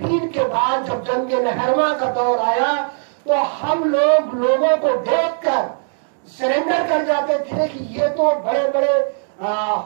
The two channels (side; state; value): left; silent; digital silence